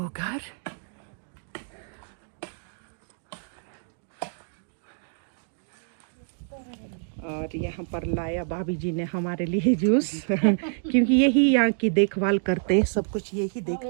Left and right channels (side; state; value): left; silent; digital silence